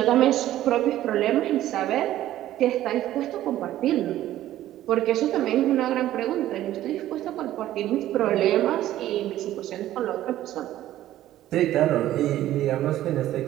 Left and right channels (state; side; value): quieter; left; 13.6 dB